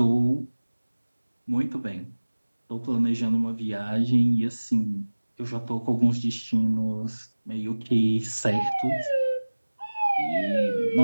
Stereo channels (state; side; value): inverted; both; correlation -1.00